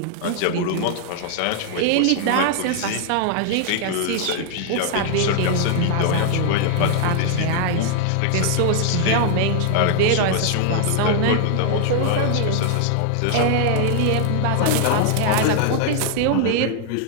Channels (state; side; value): different; both; correlation 0.00